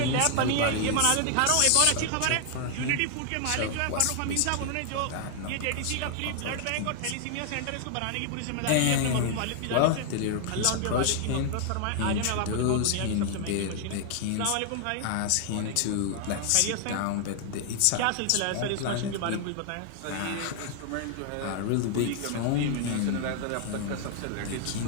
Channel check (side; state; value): both; different; correlation 0.00